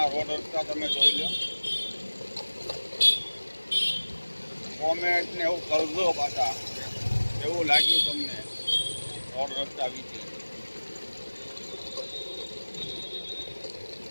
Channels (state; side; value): inverted; both; correlation -1.00